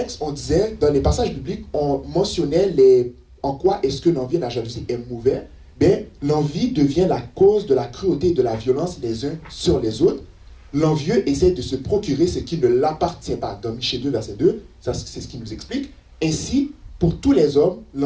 on disait, dans les passages bibliques, on mentionnait en quoi est-ce que l'envie et la jalousie est mauvais. Bien, l'envie devient la cause de la cruauté et de la violence les uns sur les autres. L'envieux essaie de se procurer ce qui ne l'appartient pas. Dans Michée 2, verset 2, ça, c'est ce qui nous explique. Ainsi, pour tous les hommes,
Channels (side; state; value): both; identical; correlation 1.00